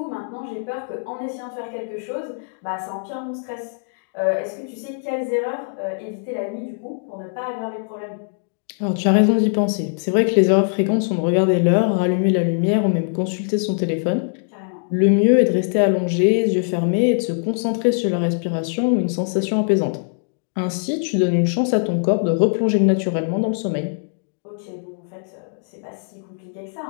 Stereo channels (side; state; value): right; silent; 64 dB below the other